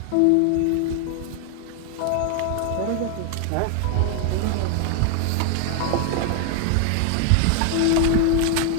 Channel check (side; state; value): both; different; correlation 0.00